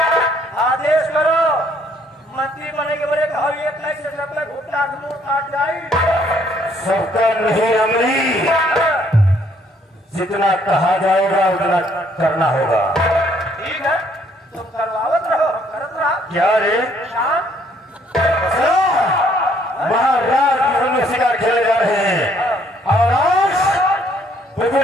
आदेश करो। मंत्री बने के बड़े कहो एक लाख से सब में घुटना मुंह काट जाए। सबका नहीं रमणी, जितना कहा जाएगा उतना करना होगा। ठीक है तुम करवावत रहो हम करत रहा। क्या रे? शाम महाराज की में शिकार खेले जा रहे हैं और आज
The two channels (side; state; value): both; normal; correlation 0.65